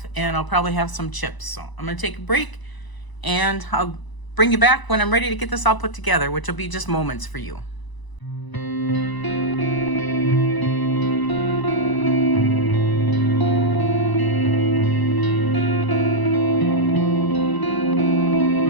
and I'll probably have some chips. So I'm gonna take a break and I'll bring you back when I'm ready to get this all put together, which will be just moments for you.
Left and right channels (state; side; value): late; right; 1.0 ms